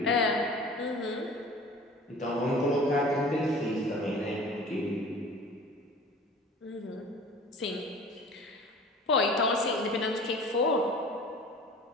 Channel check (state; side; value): normal; both; correlation 0.43